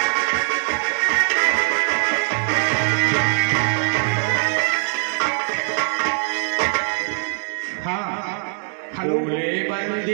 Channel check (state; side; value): silent; left; 65 dB below the other